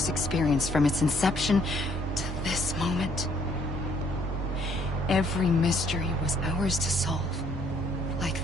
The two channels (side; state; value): both; normal; correlation 0.65